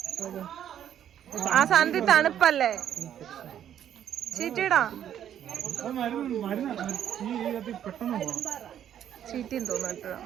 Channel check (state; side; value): quieter; left; 10.1 dB